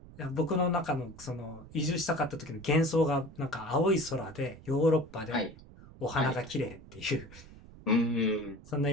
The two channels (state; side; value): noise; right; rumble, 19 dB below the sound